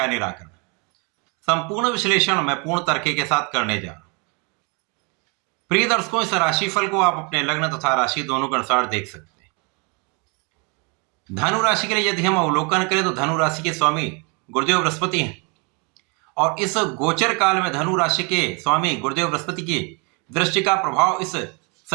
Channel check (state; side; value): quieter; left; 32.5 dB